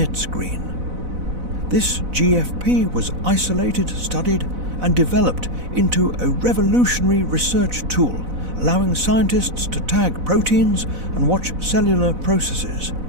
green. This GFP was isolated, studied, and developed into a revolutionary research tool, allowing scientists to tag proteins and watch cellular processes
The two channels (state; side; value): late; left; 4.0 ms